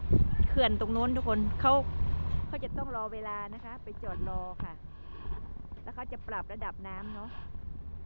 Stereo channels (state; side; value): inverted; both; correlation -1.00